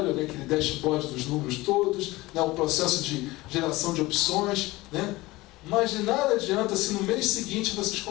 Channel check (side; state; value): right; quieter; 20.0 dB